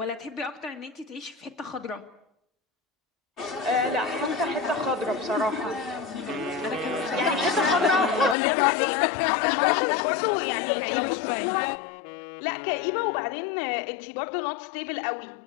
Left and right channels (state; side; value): drops out; right; at 8.3 s